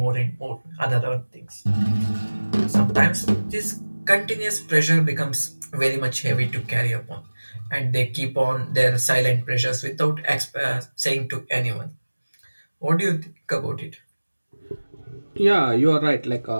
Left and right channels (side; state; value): both; inverted; correlation -1.00